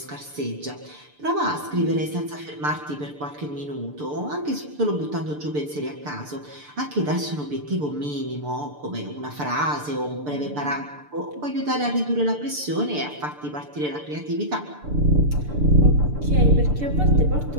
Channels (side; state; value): left; late; 6.8 ms